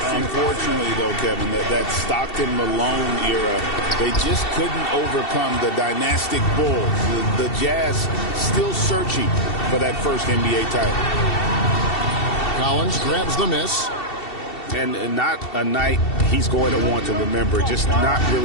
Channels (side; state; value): right; late; 2.7 ms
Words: Unfortunately, though, Kevin, that Stockton-Malone era, they just couldn't overcome the dynastic Bulls. The Jazz still searching for that first NBA title. Collins grabs the miss. And not a night he's going to want to remember, just not